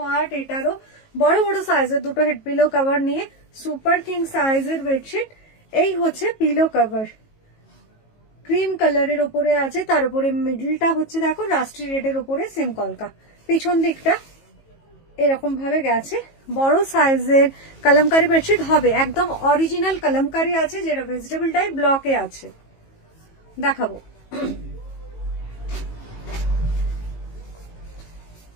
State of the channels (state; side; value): late; right; 18 ms